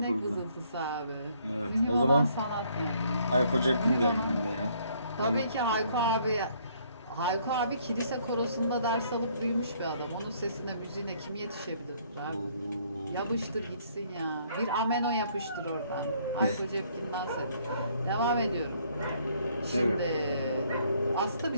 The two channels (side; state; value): both; inverted; correlation -0.65